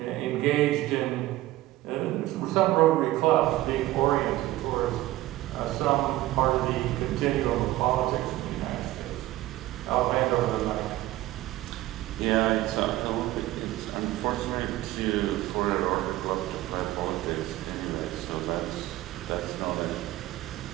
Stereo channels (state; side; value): quieter; left; 16.3 dB